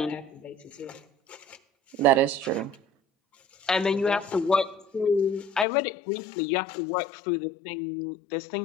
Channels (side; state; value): right; drops out; at 5.7 s